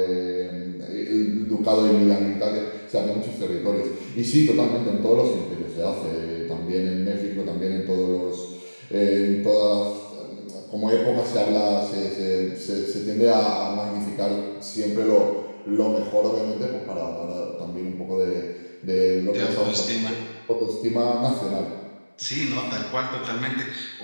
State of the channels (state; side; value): inverted; both; correlation -1.00